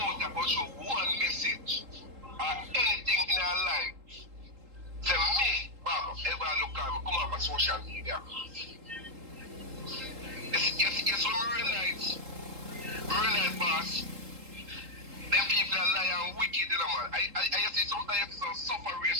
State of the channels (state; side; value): late; left; 3.8 ms